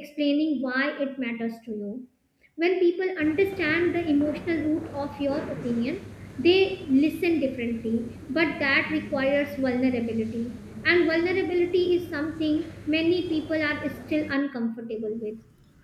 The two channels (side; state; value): both; identical; correlation 1.00